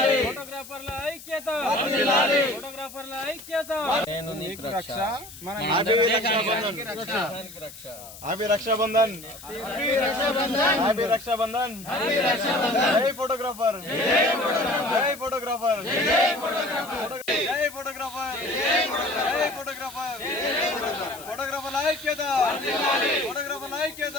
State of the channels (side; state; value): left; noise; hiss, 16 dB below the sound